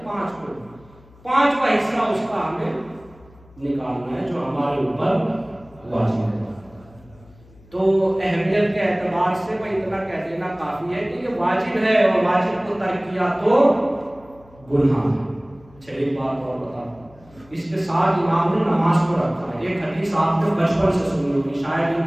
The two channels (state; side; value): noise; left; hum, 26 dB below the sound